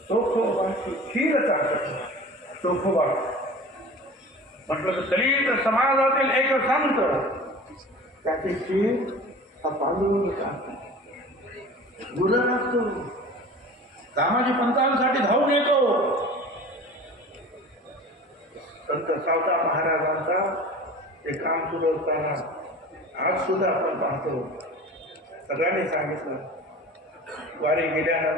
चोखोबाची खीर चालत. चोखोबा म्हटलं तर दलित समाजातील एक संत त्याची खीर हा पांडुरंग चालतो. गुरु असतो दामाजी पंतांसाठी धावून येतो. संत सावता महाराजांचा ते काम सुरू असताना आज सुद्धा आपण पाहतो. सगळ्यांनी सांगितलं वारी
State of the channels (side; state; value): both; normal; correlation 0.39